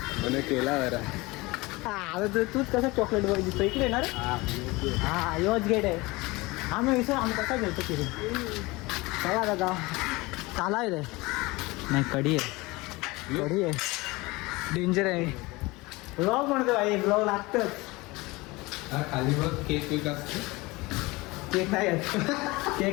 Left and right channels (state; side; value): quieter; right; 22.7 dB